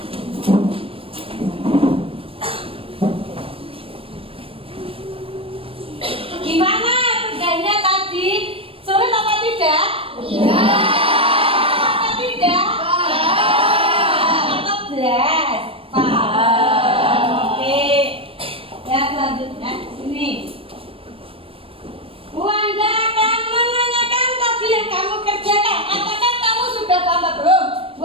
Gimana kerjanya tadi? Sulit apa tidak? Iya. Apa tidak? Atau belas? Paham. Oke. Ya selanjutnya sini. Bu Anda akan menanyakan tadi yang kamu kerjakan. Apakah kamu sudah tambah belum? Bu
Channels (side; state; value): left; late; 0.27 ms